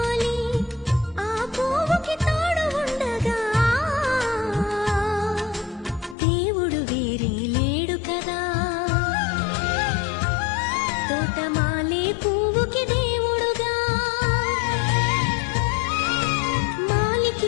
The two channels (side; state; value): right; drops out; at 6.2 s